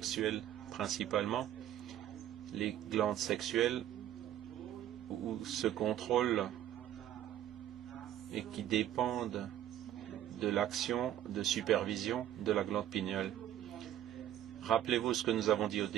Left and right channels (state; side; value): quieter; left; 11.8 dB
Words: principalement. Les glandes sexuelles où se contrôlent et qui dépendent de l'action de supervision de la glande pinéale. Rappelez-vous ce que nous avons dit au